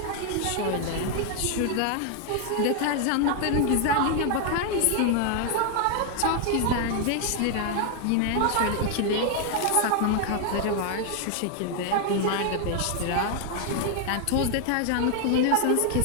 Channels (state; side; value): different; both; correlation 0.00